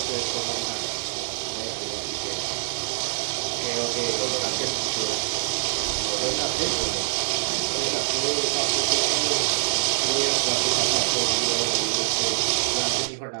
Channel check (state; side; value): silent; left; digital silence